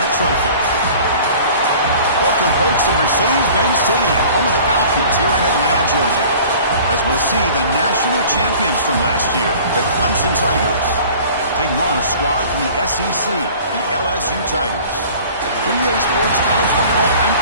trophy? Welcome, folks, to Mercedes-Benz Stadium, home of the Falcons here in Atlanta, Georgia. As we'll see the national champions from last year, the Clemson Tigers, taking on a squad from the SEC, the LSU Tigers. From EA Sports College Football, I'm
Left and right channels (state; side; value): inverted; both; correlation -0.46